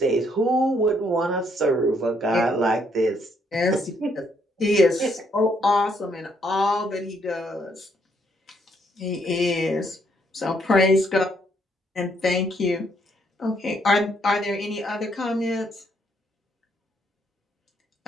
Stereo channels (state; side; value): normal; both; correlation 0.71